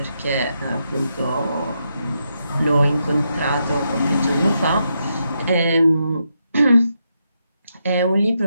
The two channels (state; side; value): inverted; both; correlation -0.82